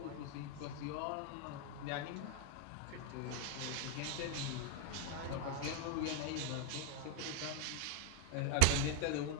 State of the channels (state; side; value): different; both; correlation 0.00